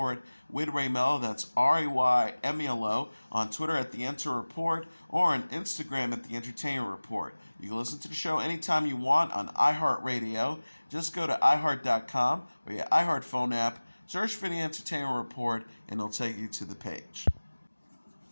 with Ray Melo, that's RAYMELO, on Twitter at The Enter Report, or on Instagram at The Entertainment Report. You can listen to the show anytime you want on iHeartRadio. Just go to iHeart.com or your iHeart phone app, search for The Entertainment Report, and it'll take you to the page.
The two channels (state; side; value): inverted; both; correlation -1.00